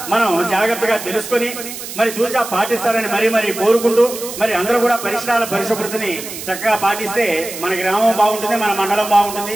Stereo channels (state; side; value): noise; right; hiss, 10 dB below the sound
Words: మనం జాగ్రత్తగా తెలుసుకుని మరి తూచా పాటిస్తారని మరీ కోరుకుంటూ మరి అందరూ కూడా పరిసరాల పరిశుభ్రతని చక్కగా పాటిస్తే మన గ్రామం బాగుంటుంది, మన మండలం బాగుంటుంది.